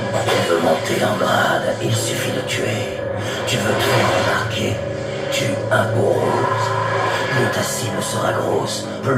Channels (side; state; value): both; identical; correlation 1.00